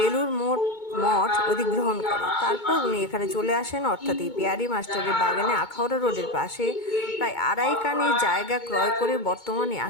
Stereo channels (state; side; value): late; right; 2.2 ms